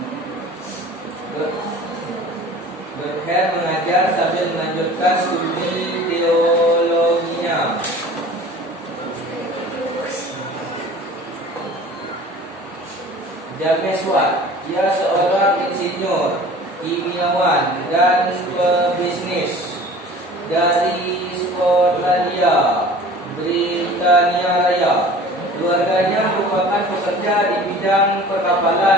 Luther mengajar sambil melanjutkan studi teologinya. James Watt, ia seorang insinyur, kimiawan, dan pebisnis dari Skotlandia, Britania Raya. Keluarganya merupakan pekerja di bidang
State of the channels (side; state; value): both; normal; correlation 0.44